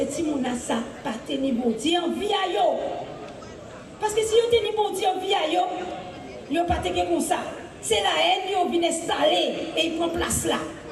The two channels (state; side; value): identical; both; correlation 1.00